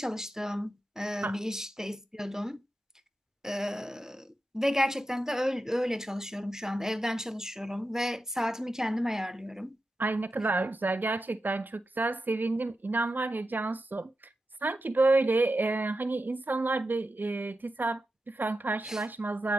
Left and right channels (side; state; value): both; normal; correlation 0.90